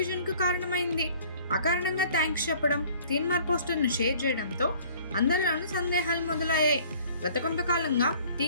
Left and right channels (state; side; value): inverted; both; correlation -0.53